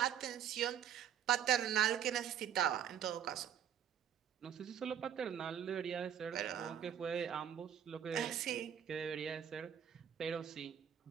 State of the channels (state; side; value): quieter; left; 9.2 dB